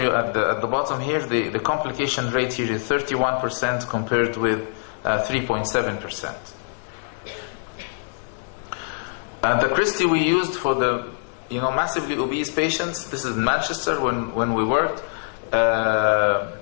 at the bottom here, the complication rate here is 31% compared with 3.7%. The Christie we used for the massively obese patients, this is in Manchester when we worked,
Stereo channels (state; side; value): silent; right; digital silence